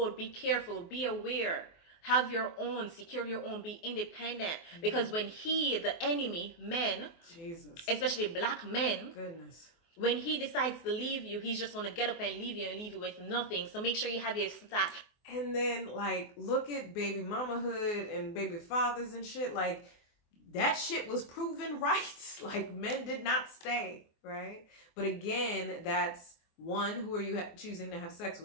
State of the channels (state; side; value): late; right; 23 ms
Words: be careful, be aware, have your own, secure your own, be independent. Because when the enemy, men, Jesus, especially black men, goodness, when he decides to leave you, he's just going to get up and leave you with nothing. So make sure you have your stack. And then, like, look at baby mamahood and baby fathers and shit. Like, that shit was proven right. Like, men did not stay, right? But again, that's one, who are you choosing to have sex